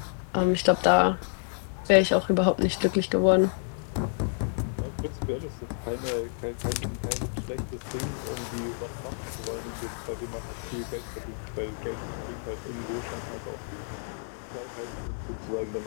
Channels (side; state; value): right; silent; 58 dB below the other